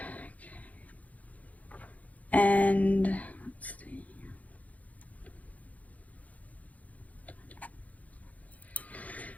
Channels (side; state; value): right; late; 0.072 ms